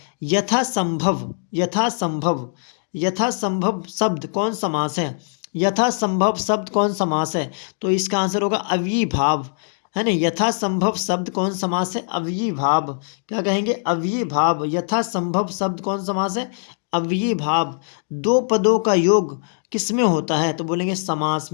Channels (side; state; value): right; silent; 62 dB below the other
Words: यथासंभव। यथासंभव। यथासंभव शब्द कौन समास है? यथासंभव शब्द कौन समास है? तो इसका आंसर होगा अव्ययीभाव, है ना। यथासंभव शब्द कौन समास है? अव्ययीभाव। क्या कहेंगे? अव्ययीभाव। यथासंभव शब्द कौन समास है? अव्ययीभाव। दो पदों का योग किसमें होता है? तो बोलेंगे समास